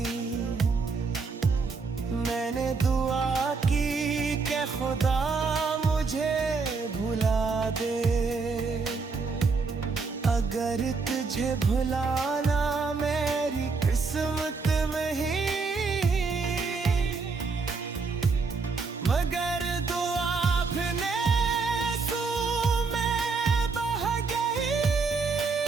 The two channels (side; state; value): left; quieter; 4.5 dB